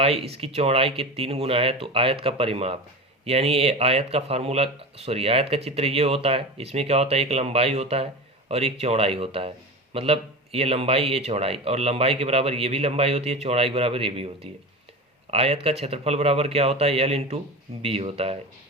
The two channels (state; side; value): normal; both; correlation 0.28